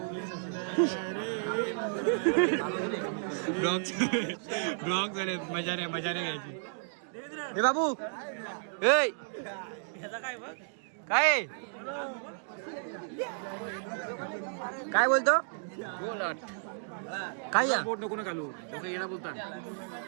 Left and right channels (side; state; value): left; silent; digital silence